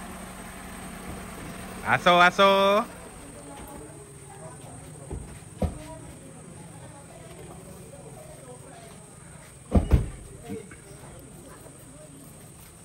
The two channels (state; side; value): identical; both; correlation 1.00